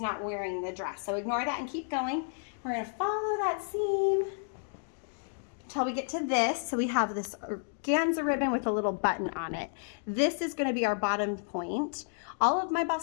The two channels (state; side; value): silent; right; digital silence